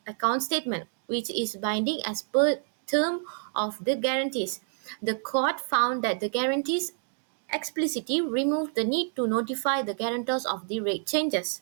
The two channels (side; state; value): left; silent; 59 dB below the other